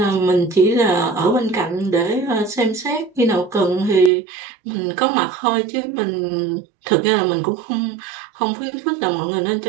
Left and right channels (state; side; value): drops out; left; at 4.1 s